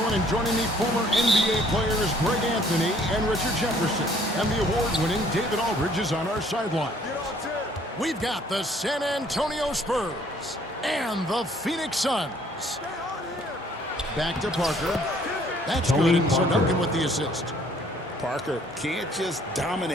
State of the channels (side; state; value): both; normal; correlation 0.60